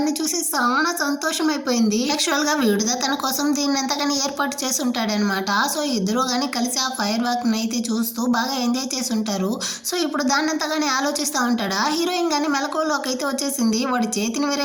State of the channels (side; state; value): both; identical; correlation 1.00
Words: చూసి చాలా సంతోషం అయిపోయింది. యాక్చువల్గా వీడుదా తన కోసం దీన్ని ఎంతగాని ఏర్పాటు చేసి ఉంటాడనమాట. సో ఇద్దరు కానీ కలిసి ఆ ఫైర్ వర్క్ని అయితే చూస్తూ బాగా ఎంజాయ్ చేసి ఉంటారు. సో ఇప్పుడు దాన్ని అంతగానే ఆలోచిస్తూ ఉంటాడా. హీరోయిన్ కానీ మెలకువలోకి అయితే వచ్చేసింది. వాడి చేతిని వేరే